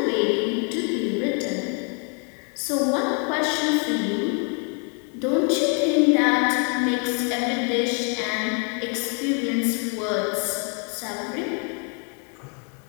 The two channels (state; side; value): quieter; right; 39.7 dB